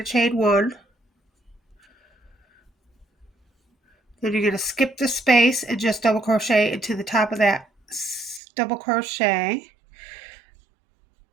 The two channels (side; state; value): left; drops out; at 8.4 s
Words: chain 1. Then you're going to skip the space and just double crochet into the top of that double crochet.